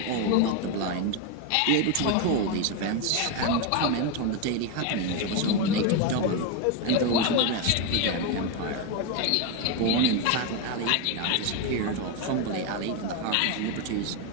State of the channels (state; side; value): different; both; correlation 0.02